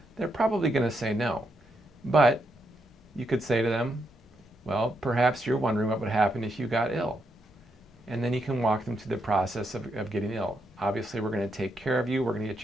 They're probably going to say no. But you could say to them, well, perhaps you're wondering what would happen if you got ill. And then you can walk them through the process of getting ill. Obviously, we're going to take care of you. We're going to get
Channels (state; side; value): normal; both; correlation 0.80